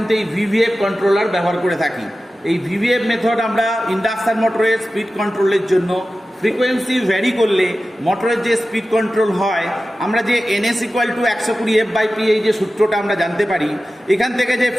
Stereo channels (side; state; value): both; normal; correlation 0.94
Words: এই ভিভিএফ কন্ট্রোলার ব্যবহার করে থাকি। এই ভিভিএফ মেথড আমরা ইন্ডাকশান মোটরের স্পিড কন্ট্রোলের জন্য, ফ্রিকোয়েন্সি ভ্যারি করলে মোটরের যে স্পিড কন্ট্রোল হয়, আমরা যে NS = 120F/P এই যে সূত্রটা আমরা জানতে পারি, এখান থেকে যে